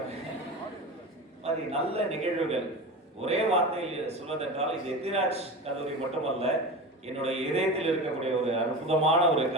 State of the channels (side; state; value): both; normal; correlation 0.28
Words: மாதிரி நல்ல நிகழ்வுகள். ஒரே வார்த்தையில் சொல்வதென்றால், இது எத்திராஜ் கல்லூரி மட்டுமல்ல, என்னுடைய இதயத்தில் இருக்கக்கூடிய ஒரு அற்புதமான ஒரு